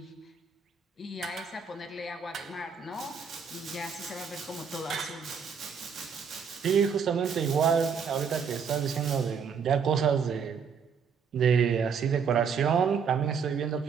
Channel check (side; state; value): left; quieter; 6.3 dB